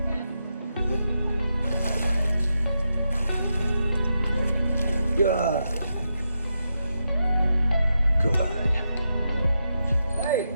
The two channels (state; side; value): inverted; both; correlation -0.85